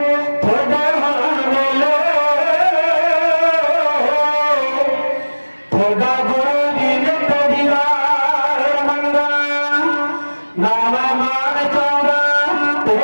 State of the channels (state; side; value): inverted; both; correlation -1.00